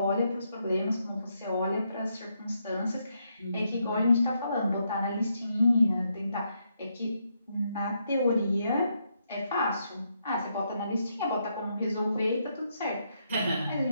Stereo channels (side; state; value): both; inverted; correlation -0.78